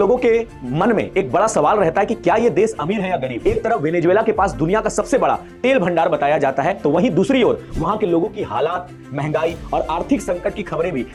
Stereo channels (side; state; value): both; identical; correlation 1.00